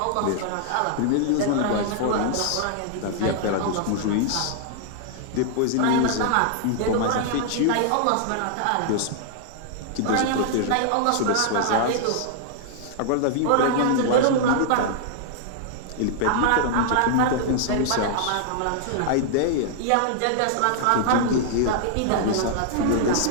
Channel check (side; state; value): both; different; correlation -0.01